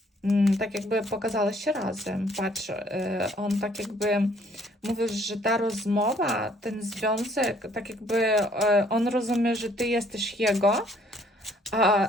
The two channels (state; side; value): normal; both; correlation 0.62